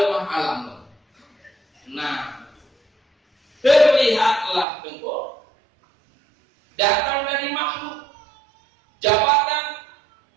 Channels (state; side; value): drops out; left; at 4.7 s